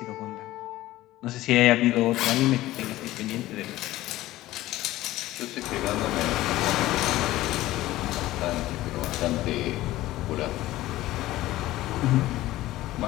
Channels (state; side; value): quieter; right; 16.3 dB